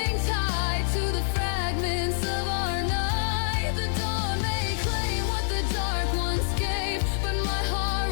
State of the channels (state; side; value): silent; right; 56 dB below the other